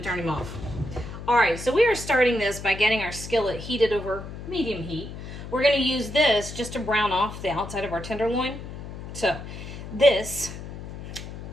turn him off. All right, so we are starting this by getting our skillet heated over medium heat. We're going to use this just to brown off the outside of our tenderloin. So this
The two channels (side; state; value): left; noise; hum, 10 dB below the sound